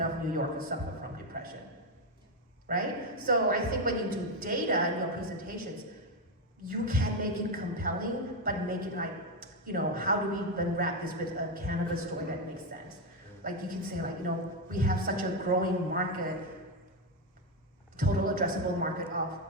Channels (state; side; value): normal; both; correlation 0.07